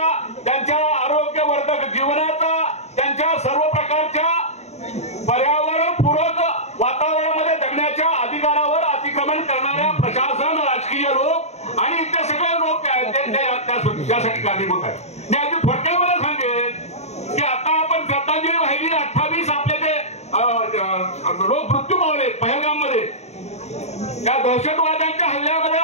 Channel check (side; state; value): right; late; 0.32 ms